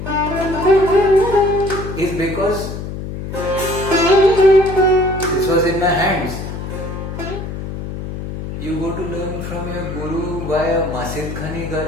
is because this was in my hands. You go to learn from your guru via Masid Khani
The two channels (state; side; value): noise; left; hum, 7 dB below the sound